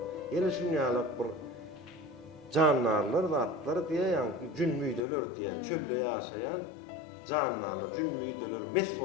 ýene şunýalak bir jannarlar, zatlar diýe ýanky jünbüýdeler diýe çölde ýaşaýan Canlarlar, cünmüydeler, mes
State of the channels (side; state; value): right; drops out; at 5.1 s